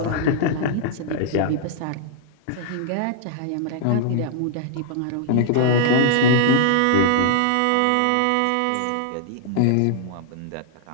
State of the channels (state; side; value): different; both; correlation -0.01